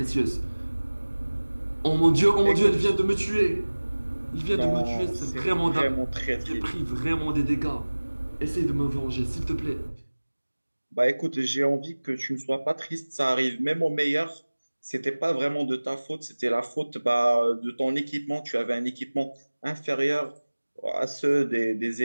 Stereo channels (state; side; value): inverted; both; correlation -1.00